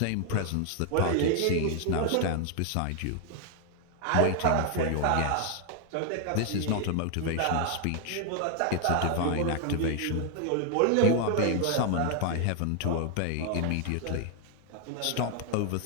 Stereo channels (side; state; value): both; different; correlation 0.00